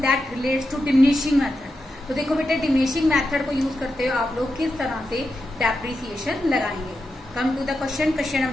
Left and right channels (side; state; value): both; normal; correlation 0.88